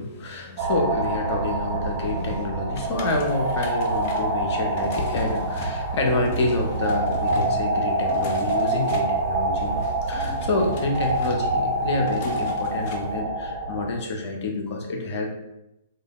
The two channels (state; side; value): inverted; both; correlation -0.40